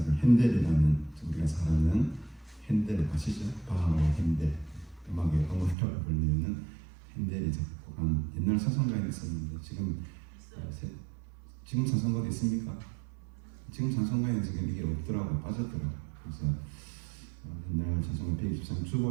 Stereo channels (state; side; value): drops out; left; at 5.8 s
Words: 핸델이라는 우리가 잘 아는 핸델 아시죠? 바하와 핸델 음악의 어머니라고 불리는 핸델이 작곡한 옛날 찬송가에 있었는데 지금 찬송가도 있습니까? 지금 찬송가에 지금 이게 없더라고 빠졌더라고. 그래서 옛날 찬송가 123